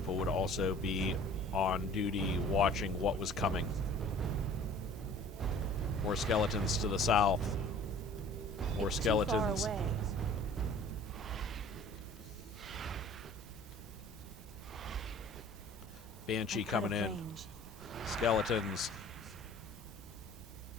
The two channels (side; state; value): both; normal; correlation 0.48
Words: would also be on duty watching what was coming. More skeletons to the south. More Too skeletons. far away. Banshee Out of coming in. range. Skeletons.